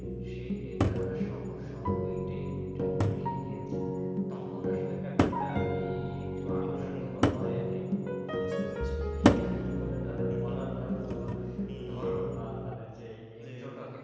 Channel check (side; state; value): both; identical; correlation 1.00